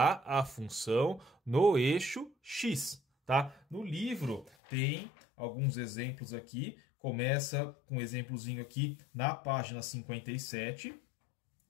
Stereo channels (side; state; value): right; drops out; at 4.5 s